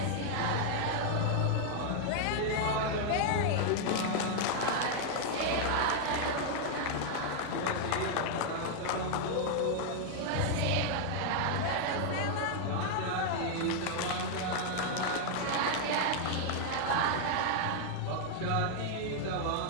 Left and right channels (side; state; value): both; different; correlation 0.00